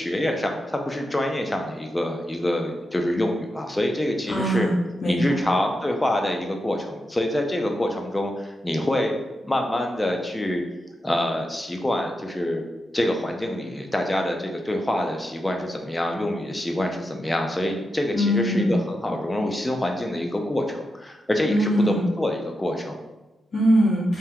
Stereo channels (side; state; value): both; normal; correlation 0.87